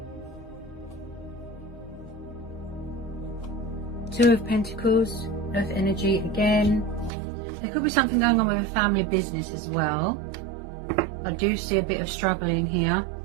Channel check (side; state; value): left; drops out; at 7.1 s